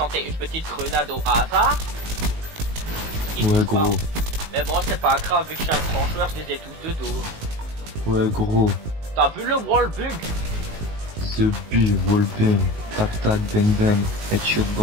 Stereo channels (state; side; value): late; left; 19 ms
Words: une petite grenade au hasard. Ouais, gros. Pas. Mais bon, c'est pas grave, vu que je suis un grand joueur, je les ai tous de dos. Ouais, gros. T'as vu le wallbug? The Bu, wallbang. Tac tac, bang bang. Headshot